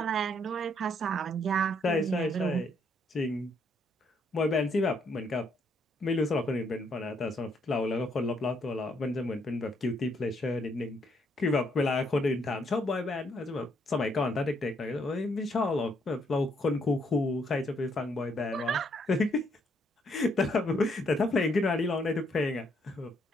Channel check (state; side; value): normal; both; correlation 0.72